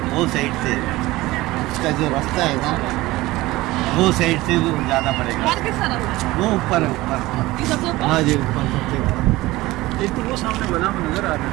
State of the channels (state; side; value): quieter; left; 18.9 dB